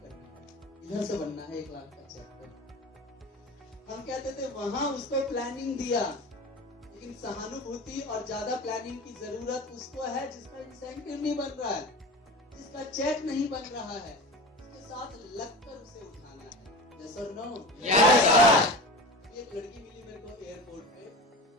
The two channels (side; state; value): both; normal; correlation 0.32